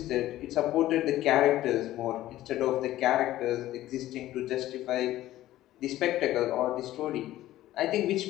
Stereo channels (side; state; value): right; quieter; 14.7 dB